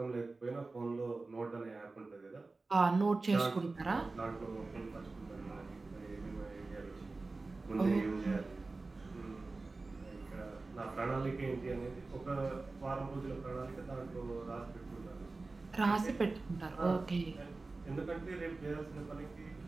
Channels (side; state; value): left; quieter; 3.5 dB